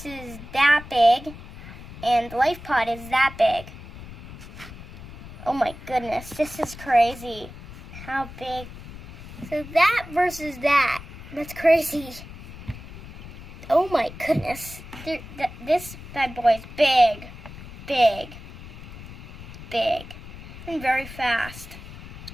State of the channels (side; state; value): left; noise; rumble, 14 dB below the sound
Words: is that big, and the life pod is that big. Oh my goodness, this is crazy. How big? So that versus that. That's crazy. Oh my goodness. This bad boy is big. Big. Big. And very fast.